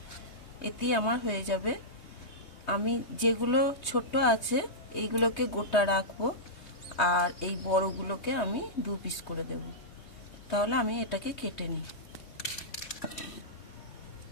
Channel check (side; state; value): right; late; 3.2 ms